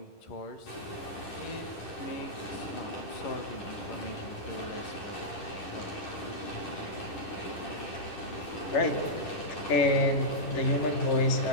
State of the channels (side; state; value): right; late; 10 ms